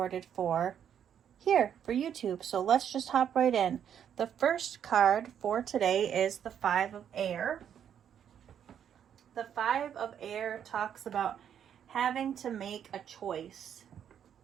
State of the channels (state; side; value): quieter; left; 9.0 dB